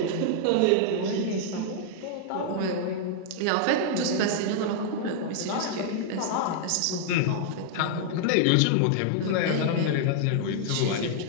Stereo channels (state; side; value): different; both; correlation -0.01